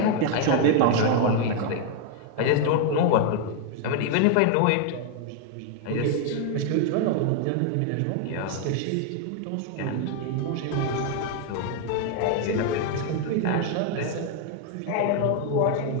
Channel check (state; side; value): different; both; correlation 0.00